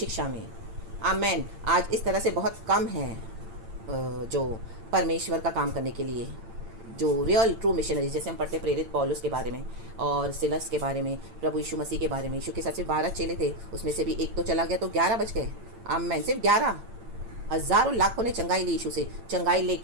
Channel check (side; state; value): left; late; 8.8 ms